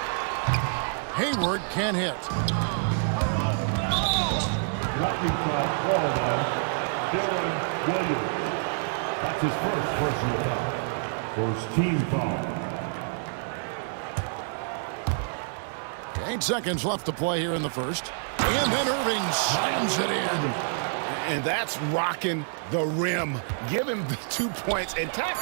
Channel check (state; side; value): silent; left; 60 dB below the other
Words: Hayward can't hit. Lightning foul called on Darren Williams. That's his first personal foul. First team foul. 8 seconds left to play here in the first. And then Irving slams it in. And that's rocking the rim. Give him the 2 points and tack